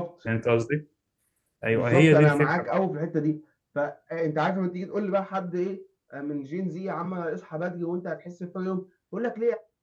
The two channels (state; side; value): identical; both; correlation 1.00